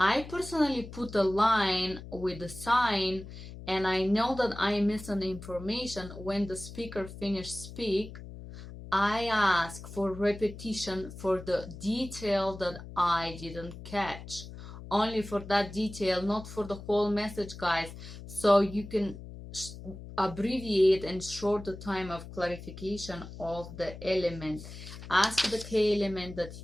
personally put a line with a sign, and I know that I miss an information. When the speaker finished speak, I ask for repetition for the detail that I didn't catch. Only for that detail, not for the whole message, guys. So you can abbreviate and short the time of clarification of the element. Ask the key element that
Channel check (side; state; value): left; noise; hum, 13 dB below the sound